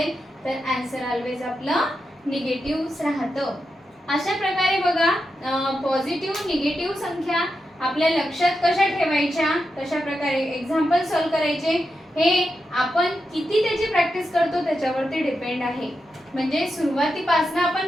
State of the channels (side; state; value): both; normal; correlation 0.87